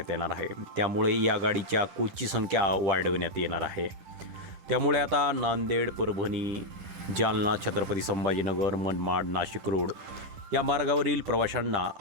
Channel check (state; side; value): late; left; 10 ms